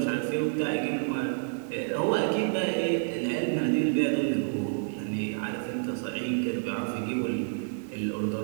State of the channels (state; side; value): silent; left; digital silence